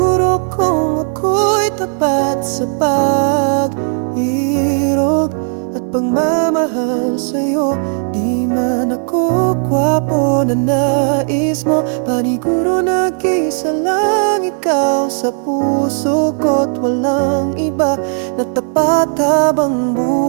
kong ako'y tapat sa pag-irog at pagmamahal sa'yo. Di man ako gwapo na nais mo, paniguro nag-isa lang ikaw sa puso ko't walang iba na tapat habang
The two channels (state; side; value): silent; left; 70 dB below the other